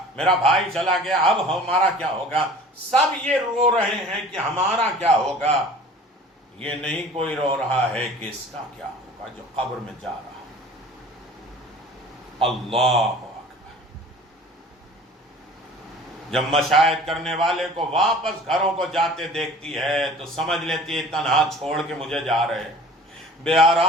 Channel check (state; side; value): normal; both; correlation 0.45